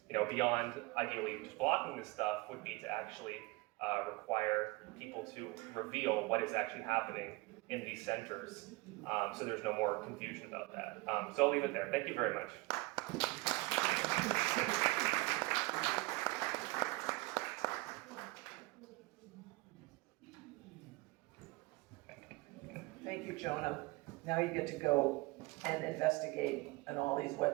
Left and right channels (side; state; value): left; quieter; 23.4 dB